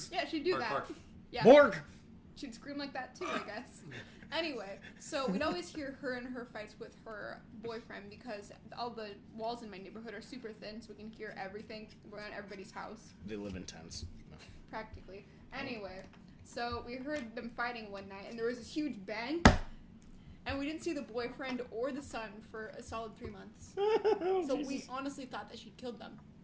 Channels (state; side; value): identical; both; correlation 1.00